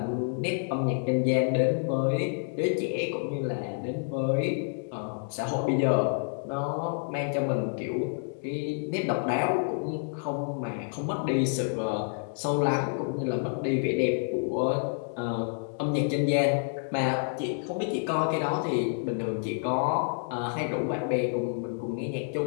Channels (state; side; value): silent; right; 59 dB below the other